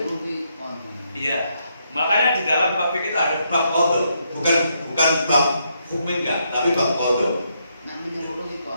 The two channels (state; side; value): inverted; both; correlation -0.77